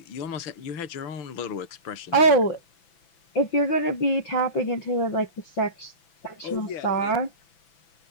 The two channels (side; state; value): right; late; 6.0 ms